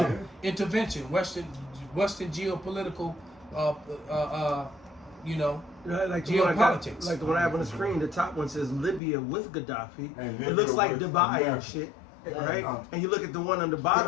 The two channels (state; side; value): drops out; right; at 9.0 s